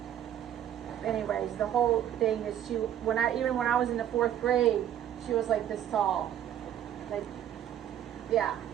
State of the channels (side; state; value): left; quieter; 10.7 dB